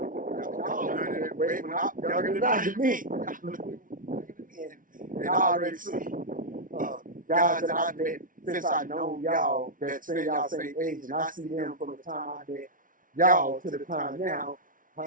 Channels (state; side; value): late; left; 0.39 ms